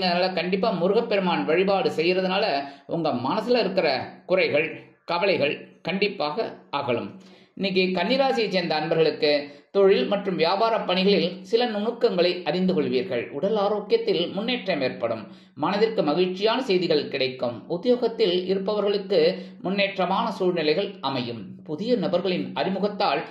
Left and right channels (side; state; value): both; identical; correlation 1.00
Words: கண்டிப்பா முருகப்பெருமான் வழிபாடு செய்யறதுனால உங்க மனசுல இருக்கிற குறைகள் கவலைகள் கண்டிப்பாக அகலும். இன்னைக்கு கன்னிராசியை சேர்ந்த அன்பர்களுக்கு தொழில் மற்றும் வியாபார பணிகளில் சில நுணுக்கங்களை அறிந்து கொள்வீர்கள். உடல் ஆரோக்கியத்தில் முன்னேற்றம் ஏற்படும். மனதிற்கு மகிழ்ச்சியான செய்திகள் கிடைக்கும். உத்தியோகத்தில் இருப்பவர்களுக்கு முன்னேற்றமான சூழ்நிலைகள் அமையும். புதிய நபர்களின் அறிமுகத்தால்